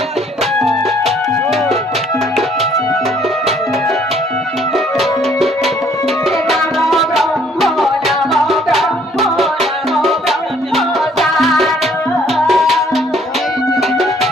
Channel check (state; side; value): normal; both; correlation 0.62